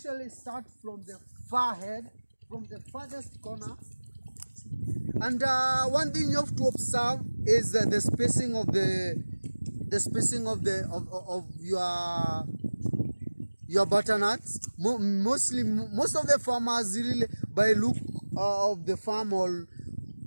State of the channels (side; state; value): both; inverted; correlation -1.00